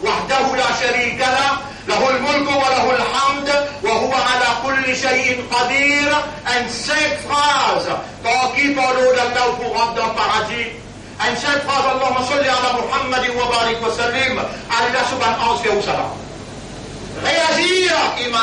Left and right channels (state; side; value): identical; both; correlation 1.00